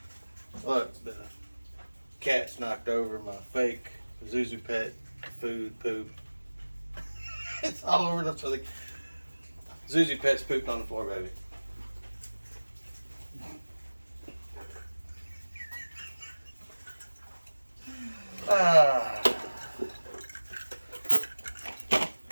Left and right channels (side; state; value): both; inverted; correlation -1.00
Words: Look, the cat's knocked over my fake Zuzu Pet food poop. It's all over the place. Zuzu Pet's pooped on the floor, baby. Ah.